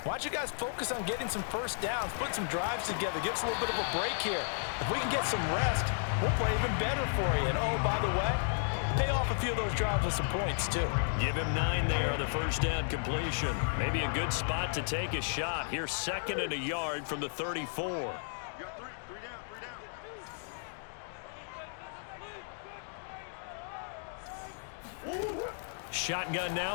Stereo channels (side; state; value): right; silent; digital silence